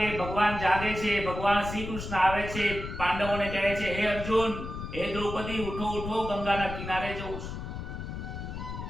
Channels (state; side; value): noise; left; rumble, 7 dB below the sound